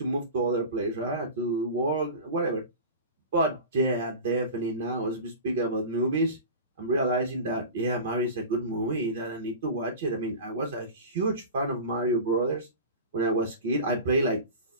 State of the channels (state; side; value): inverted; both; correlation -0.32